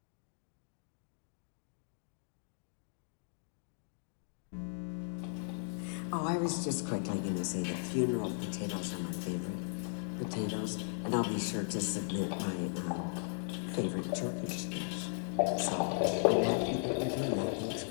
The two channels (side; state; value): right; silent; digital silence